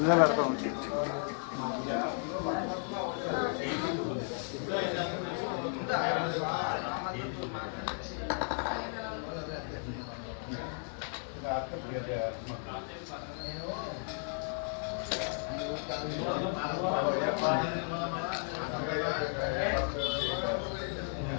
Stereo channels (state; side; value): silent; right; 55 dB below the other